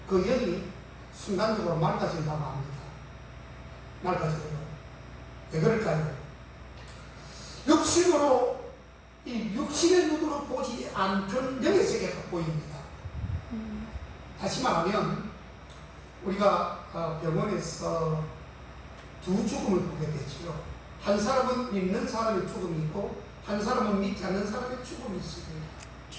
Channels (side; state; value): both; identical; correlation 1.00